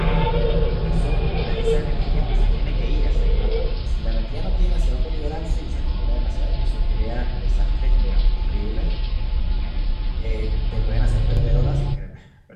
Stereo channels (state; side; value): identical; both; correlation 1.00